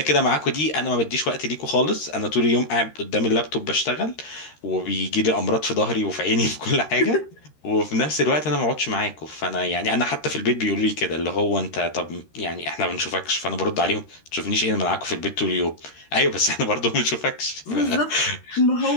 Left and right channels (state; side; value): late; right; 13 ms